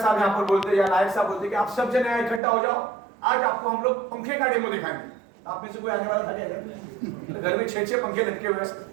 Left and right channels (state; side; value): drops out; left; at 2.4 s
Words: यहाँ पर बोलते या नायक साहब बोलते कि आप सब जने यहाँ इकट्ठा हो जाओ, आज आपको हम लोग पंखे का डेमो दिखाएंगे, आप में से कोई आने वाला था क्या इधर? घर में 6-6 पंखे लटके हुए